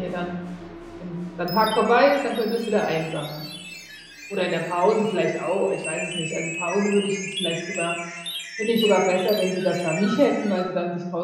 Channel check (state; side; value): identical; both; correlation 1.00